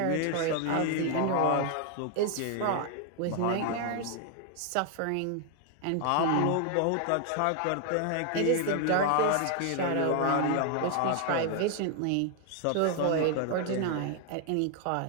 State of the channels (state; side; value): different; both; correlation 0.00